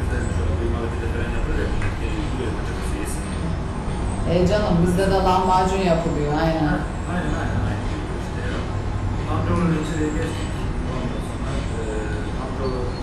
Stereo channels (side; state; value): both; identical; correlation 1.00